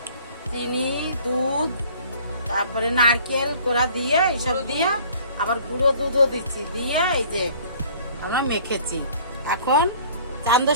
চিনি, দুধ, তারপরে নারকেল কোড়া দিয়ে এইসব দিয়ে আবার গুঁড়ো দুধও দিচ্ছি, দিয়ে এই যে আমরা মেখেছি। এখন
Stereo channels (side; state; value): both; inverted; correlation -0.52